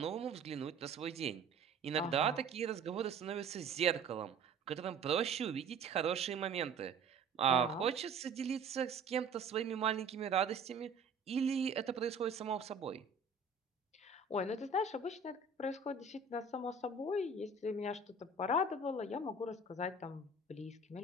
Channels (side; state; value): left; quieter; 4.1 dB